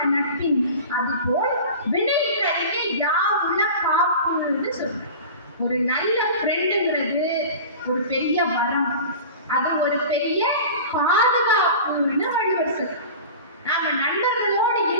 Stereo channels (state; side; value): inverted; both; correlation -0.36